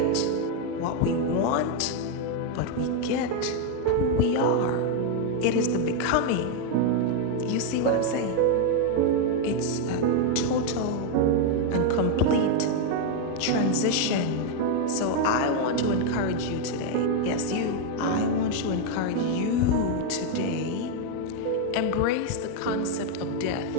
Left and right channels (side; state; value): both; different; correlation 0.01